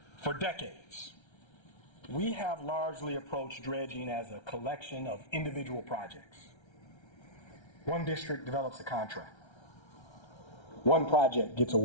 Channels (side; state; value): right; late; 1.3 ms